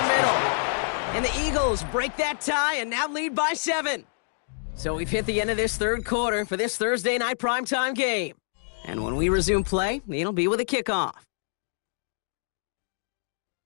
middle. And the Eagles break that tie and now lead by 7. So we've hit the end of this 3rd quarter for this Thursday night primetime game. And when we resume play, it'll be with a kickoff.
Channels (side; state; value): right; silent; digital silence